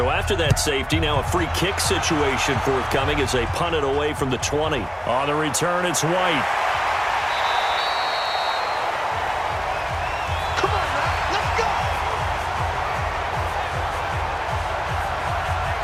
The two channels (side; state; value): both; identical; correlation 1.00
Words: after that safety, now a free kick situation forthcoming as they punt it away from the 20. On the return, it's White. Come on, man. Let's go.